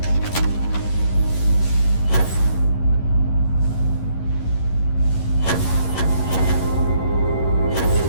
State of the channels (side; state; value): right; late; 11 ms